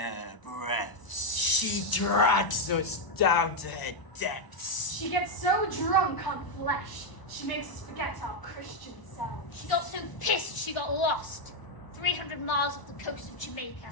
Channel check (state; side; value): late; right; 1.0 ms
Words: breaths. She drags us down to her depths. She gets so drunk on flesh, she makes us forget our Christian selves. She got so pissed she got lost. 300 miles off the coast of Jamaica.